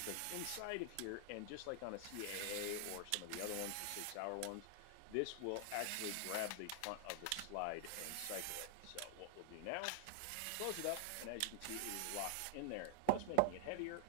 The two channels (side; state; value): both; different; correlation 0.00